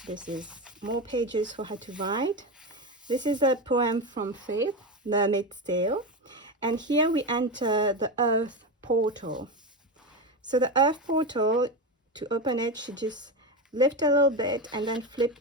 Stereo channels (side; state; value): both; normal; correlation 0.17